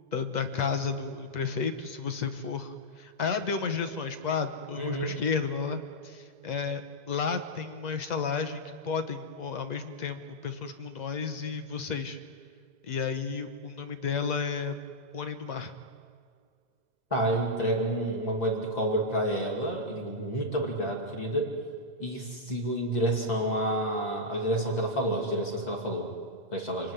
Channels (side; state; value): left; late; 2.0 ms